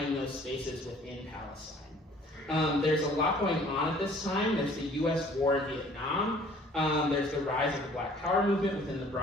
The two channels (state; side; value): normal; both; correlation 0.54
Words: those spaces within Palestine. There's a lot going on at this time. There's the US war in Vietnam. There's the rise of the Black Power movement within the